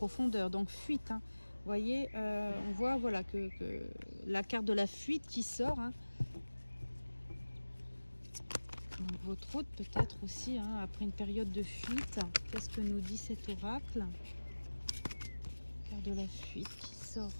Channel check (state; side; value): inverted; both; correlation -1.00